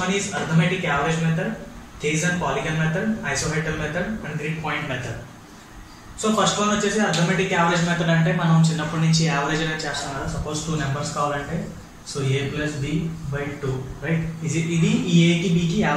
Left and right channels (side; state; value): both; identical; correlation 1.00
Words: one is arithmetic average method, Thiessen polygon method, isohyetal method and grid point method. So first one వచ్చేసి అర్థమెటిక్ యావరేజ్ మెథడ్. అంటే మనం చిన్నప్పటి నుంచి యావరేజ్ అనేది చేస్తాం కదా. సపోజ్ 2 నెంబర్స్ కావాలంటే so a plus b by 2, right? ఇది ఈ ఏకి బికి